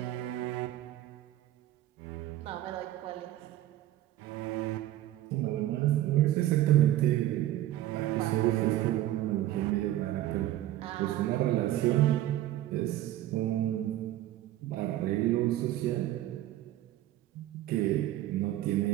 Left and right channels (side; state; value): left; quieter; 14.0 dB